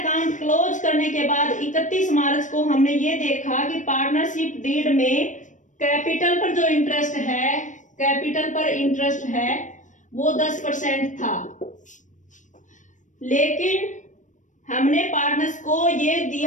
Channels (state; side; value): late; right; 0.37 ms